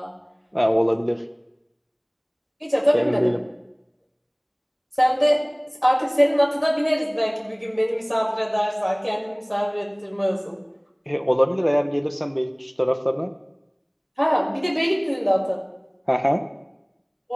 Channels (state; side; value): identical; both; correlation 1.00